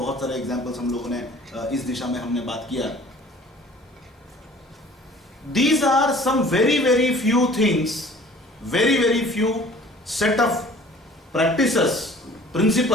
सारे एग्जाम्पल्स हम लोगों ने इस दिशा में हमने बात किया. These are some very very few things, very very few set of practices,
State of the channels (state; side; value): normal; both; correlation 0.49